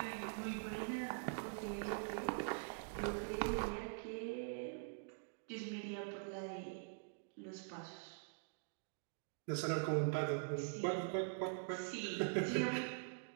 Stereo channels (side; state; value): left; silent; digital silence